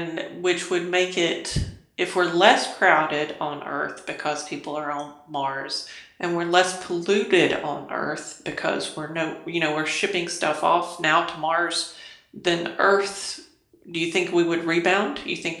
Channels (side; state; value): both; identical; correlation 1.00